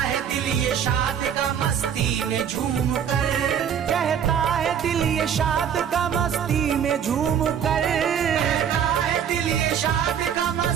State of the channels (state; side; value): quieter; left; 8.4 dB